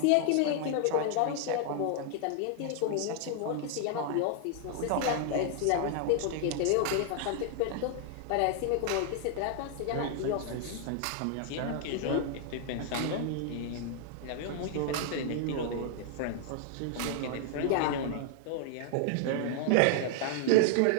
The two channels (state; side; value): different; both; correlation 0.00